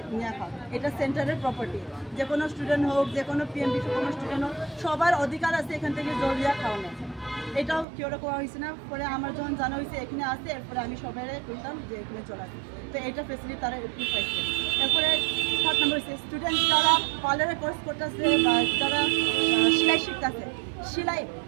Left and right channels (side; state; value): left; drops out; at 7.9 s